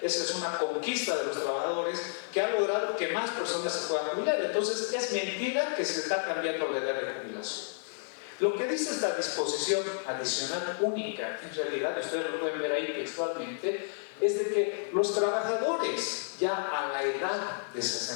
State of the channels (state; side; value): silent; right; 57 dB below the other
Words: Esa es una conquista de los trabajadores que ha logrado que más personas se puedan jubilar. Entonces es mentira que se está cambiando la edad de jubilación. Lo que dice esta disposición adicional única, en realidad, ustedes lo pueden ver ahí textualmente, es de que los trabajadores ya a la edad de